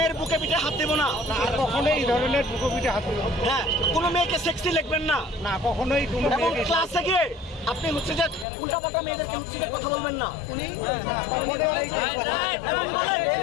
বুকে পিঠে হাত দেবো না, আর কখনোই এই ধরনের বুকে পিঠে হাত দেবো না। হ্যাঁ, কোনো মেয়েকে সেক্সি লিখবেন না, না কখনোই কোনো এবং মেয়েকে ক্লাসে গিয়ে আপনি হচ্ছে যে উল্টাপাল্টা মেয়েদেরকে হচ্ছে যে কথা বলবেন না। উনি এবং বলেন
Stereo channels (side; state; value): right; drops out; at 8.5 s